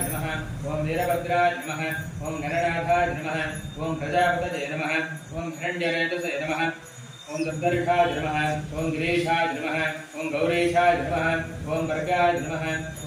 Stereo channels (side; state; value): both; identical; correlation 1.00